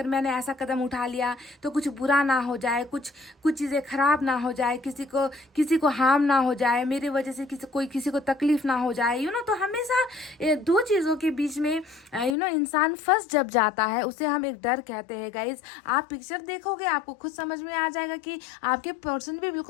मैंने ऐसा कदम उठा लिया तो कुछ बुरा ना हो जाए, कुछ चीज़ें खराब ना हो जाए, किसी को हार्म ना हो जाए, मेरे वजह से किसी को तकलीफ ना हो जाए, यू नो। तो हमेशा दो चीज़ों के बीच में यू नो इंसान फंस जब जाता है, उसे हम एक डर कहते हैं गाइज। आप पिक्चर देखोगे आपको खुद समझ में आ जाएगा कि आपके पर्सन भी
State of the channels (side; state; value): right; drops out; at 12.4 s